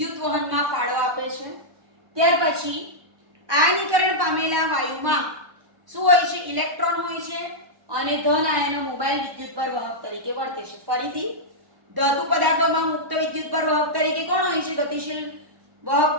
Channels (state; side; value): late; left; 1.1 ms